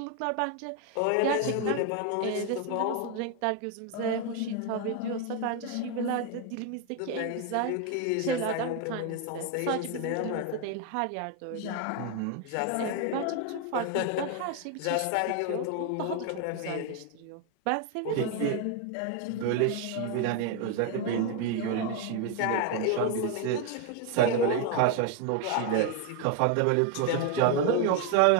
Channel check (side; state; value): both; different; correlation 0.01